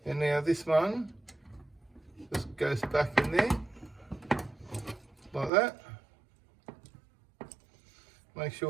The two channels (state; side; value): drops out; left; at 5.5 s